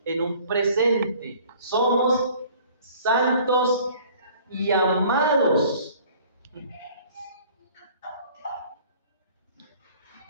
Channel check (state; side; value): inverted; both; correlation -0.52